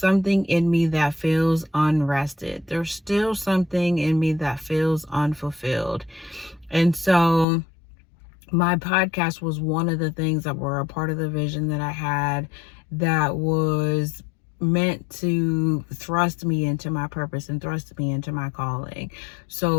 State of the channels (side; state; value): right; drops out; at 7.5 s